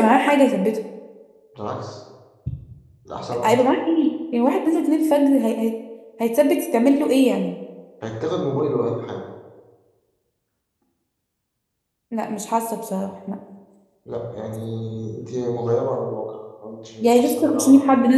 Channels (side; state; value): both; identical; correlation 1.00